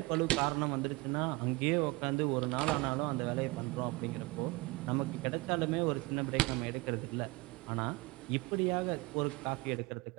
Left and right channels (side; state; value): left; quieter; 23.3 dB